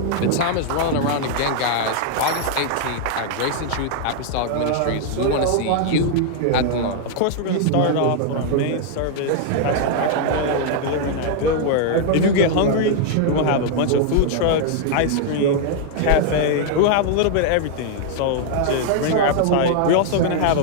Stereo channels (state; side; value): different; both; correlation 0.00